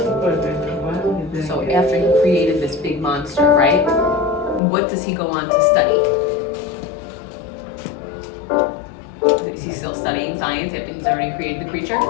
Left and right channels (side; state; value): right; drops out; at 4.6 s